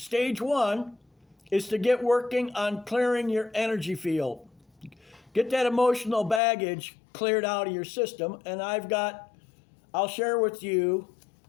1 is to get working on clearing your energy field. Get that emotional baggage cleared out of your system. And I'll share with you,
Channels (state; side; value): drops out; right; at 6.4 s